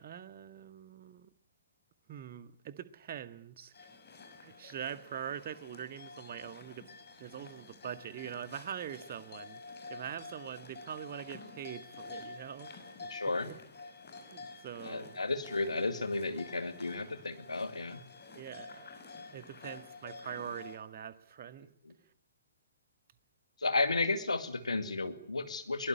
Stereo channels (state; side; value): inverted; both; correlation -0.73